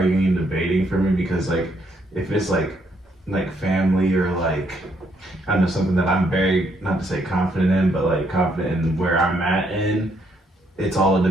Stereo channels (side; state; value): both; normal; correlation 0.72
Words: and debating for me because like if it's like family or like I don't know something that I'm very not to say confident in but like confident in where I'm at in it's all a